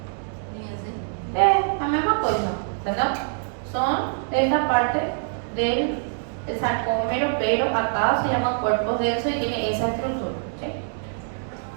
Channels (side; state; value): left; silent; 61 dB below the other